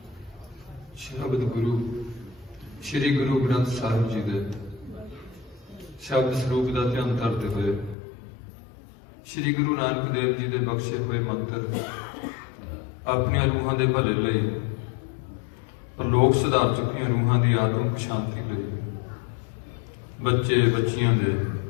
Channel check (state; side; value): drops out; right; at 8.0 s